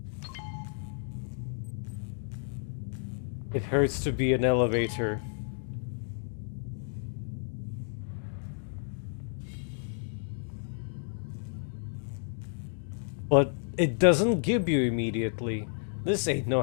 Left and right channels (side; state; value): right; silent; digital silence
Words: It hurts to be an elevator. But it doesn't give you immediately. This ain't